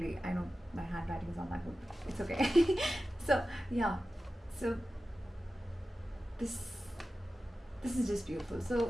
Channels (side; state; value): both; normal; correlation 0.94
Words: I know my handwriting is not that good. It's okay. So yeah, so this is just beautiful.